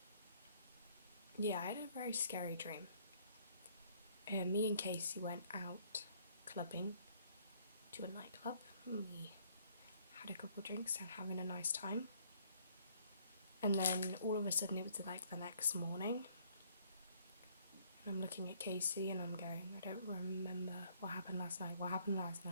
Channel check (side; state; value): both; inverted; correlation -0.63